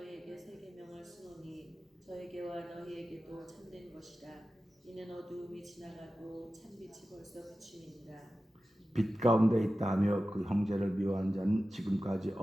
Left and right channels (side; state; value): both; normal; correlation 0.94